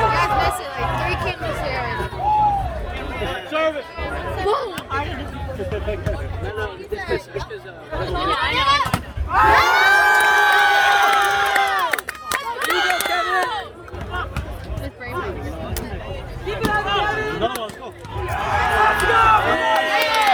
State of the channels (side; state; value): both; identical; correlation 1.00